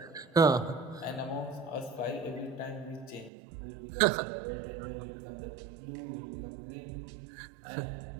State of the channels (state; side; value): drops out; left; at 3.3 s